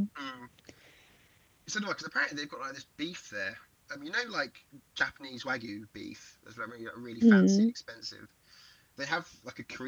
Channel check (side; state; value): both; identical; correlation 1.00